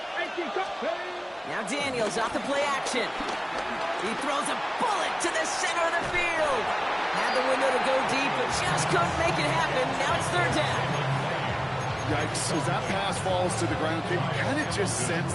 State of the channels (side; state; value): both; identical; correlation 1.00